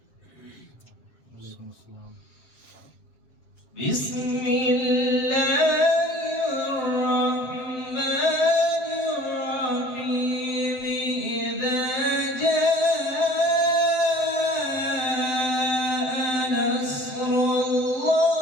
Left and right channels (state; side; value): late; right; 7.8 ms